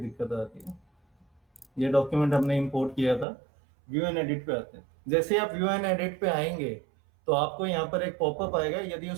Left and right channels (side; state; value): left; drops out; at 3.2 s